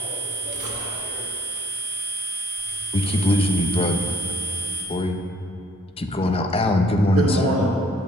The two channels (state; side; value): normal; both; correlation 0.60